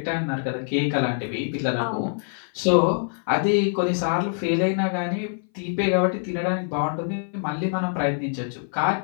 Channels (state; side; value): silent; right; 59 dB below the other